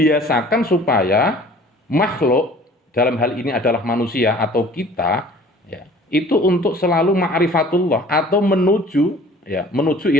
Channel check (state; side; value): normal; both; correlation 0.49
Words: supaya makhluk, dalam hal ini adalah manusia atau kita ya, itu untuk selalu ma'rifatullah atau menuju ya, menuju